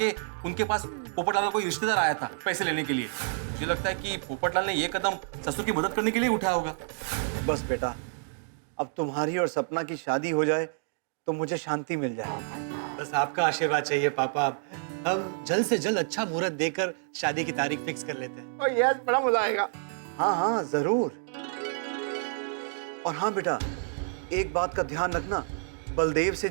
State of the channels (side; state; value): left; silent; digital silence